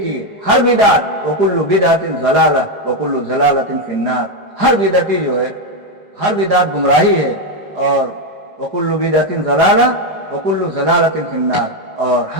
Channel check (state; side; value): late; left; 4.9 ms